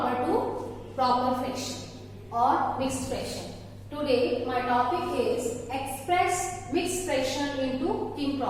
to proper fraction or mixed fraction. Today my topic is express mixed fraction into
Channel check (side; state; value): both; identical; correlation 1.00